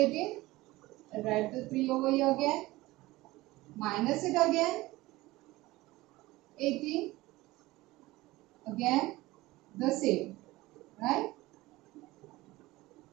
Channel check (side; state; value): left; quieter; 19.2 dB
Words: I'll write the 3 over here again. Minus it again. 18. Again the same. Right?